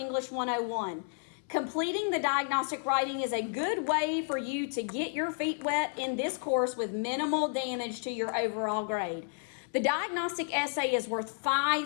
101. Completing the diagnostic writing is a good way for you to get your feet wet in this course with minimal damage to your overall grade. The diagnostic essay is worth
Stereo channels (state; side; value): silent; right; 57 dB below the other